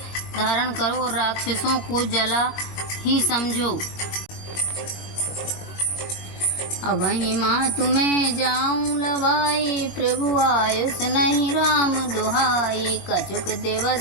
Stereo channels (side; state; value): right; late; 21 ms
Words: धारण करो और राक्षसों को जला ही समझो। अबहि माँ तुम्हें जाऊं लवाई, प्रभु आयुष नहीं राम दुहाई। कछुक